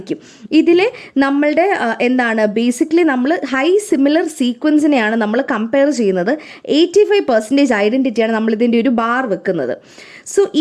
ഇതിൽ നമ്മളുടെ ബേസിക്കലി നമ്മൾ ഹൈ സിമിലർ സീക്വൻസിനെയാണ് നമ്മൾ കമ്പയർ ചെയ്യുന്നത്. 85% ഐഡൻറ്റിറ്റിയാണ് നമ്മൾ ഇതിൻ്റെ ഒരു ബാർ വെക്കുന്നത്. സോ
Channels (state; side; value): identical; both; correlation 1.00